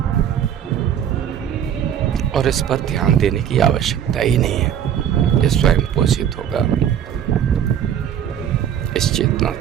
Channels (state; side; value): quieter; left; 9.5 dB